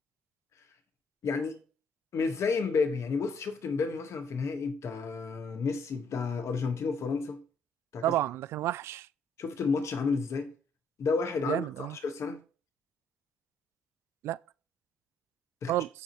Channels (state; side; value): normal; both; correlation 0.67